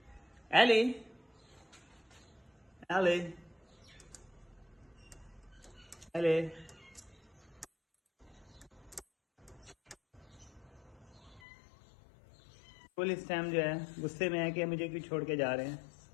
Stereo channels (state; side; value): drops out; right; at 11.4 s